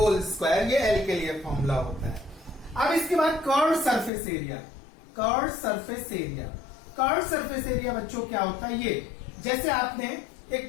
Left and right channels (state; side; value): drops out; right; at 4.1 s